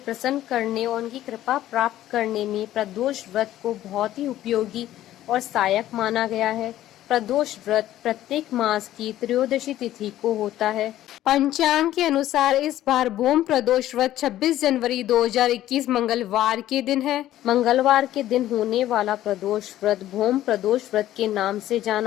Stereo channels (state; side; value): quieter; right; 13.5 dB